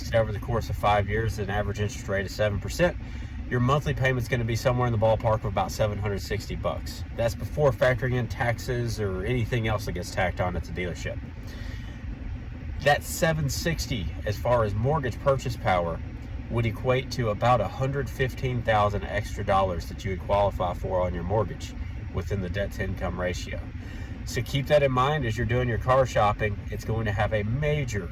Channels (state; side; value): identical; both; correlation 1.00